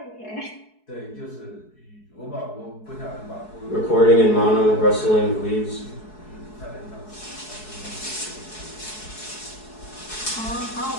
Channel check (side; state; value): right; late; 4.7 ms